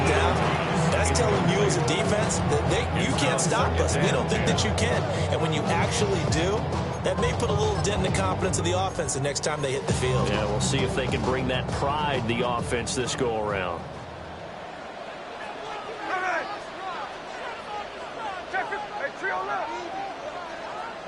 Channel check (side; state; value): both; identical; correlation 1.00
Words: down, that's telling you as a defense that you can't stop us. We don't think that you can. And when you actually do, that may put a little dent in the confidence of the offense the next time they hit the field. Yeah, we'll see if they can bring that pride, the offense, this go-around.